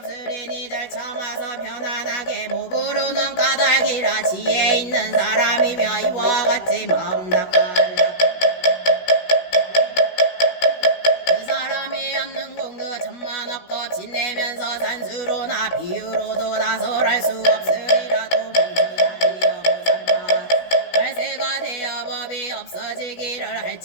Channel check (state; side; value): late; right; 16 ms